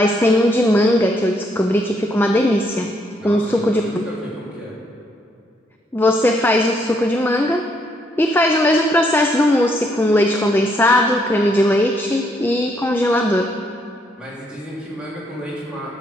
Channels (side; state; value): both; normal; correlation 0.73